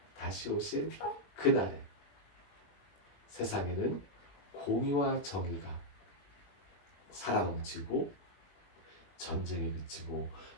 다시 오실 그날에 세상에는 공의와 정의가 살아넘치고 전쟁이 그치고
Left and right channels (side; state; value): right; late; 20 ms